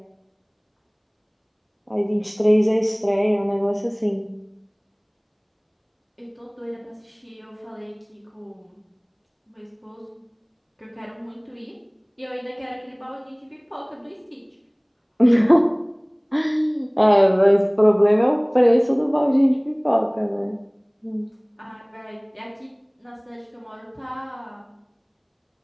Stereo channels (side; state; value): both; identical; correlation 1.00